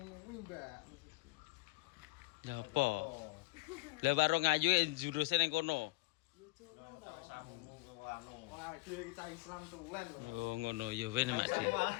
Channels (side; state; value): right; quieter; 24.7 dB